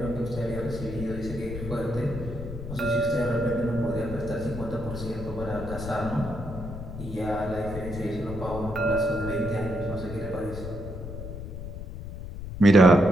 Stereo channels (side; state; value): left; noise; rumble, 9 dB below the sound